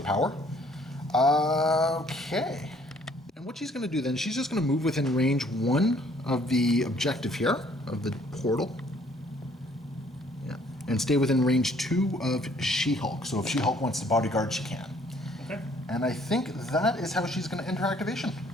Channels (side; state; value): both; normal; correlation 0.61